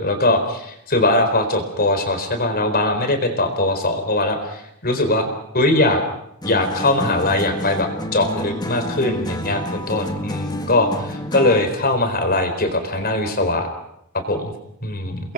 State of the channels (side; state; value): both; normal; correlation -0.09